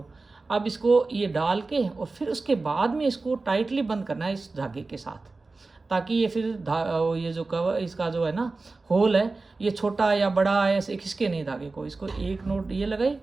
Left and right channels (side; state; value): left; quieter; 3.6 dB